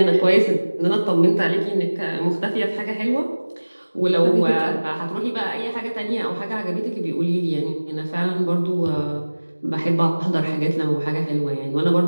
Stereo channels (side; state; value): both; inverted; correlation -1.00